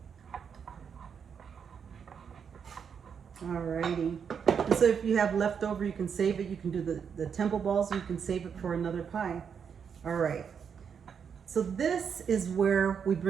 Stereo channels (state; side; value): quieter; left; 7.0 dB